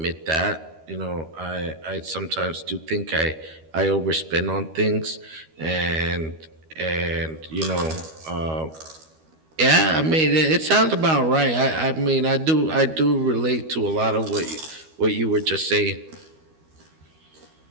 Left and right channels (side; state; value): left; late; 13 ms